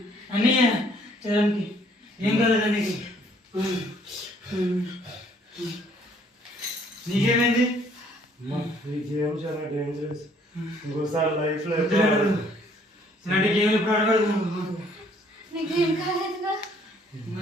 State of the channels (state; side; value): normal; both; correlation 0.62